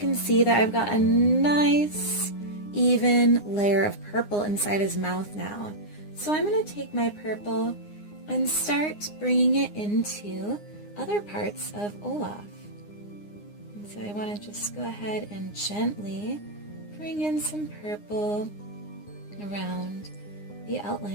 see that I've got a nice even layer of purple inside his mouth now. So I'm going to take my purple and start bringing it into other parts of Olaf. And so I want to just go ahead and gently bring in some purple around the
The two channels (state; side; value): late; right; 9.7 ms